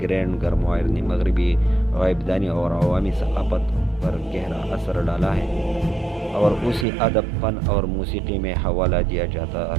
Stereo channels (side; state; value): left; drops out; at 6.9 s